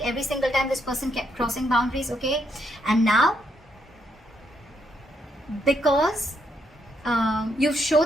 every single time this person kept crossing boundaries, okay? And now, because you've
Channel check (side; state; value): both; normal; correlation 0.76